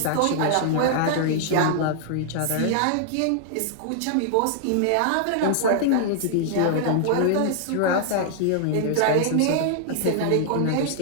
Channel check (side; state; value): both; different; correlation -0.01